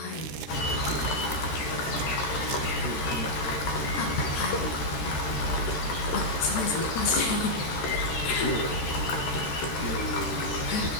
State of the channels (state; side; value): late; right; 13 ms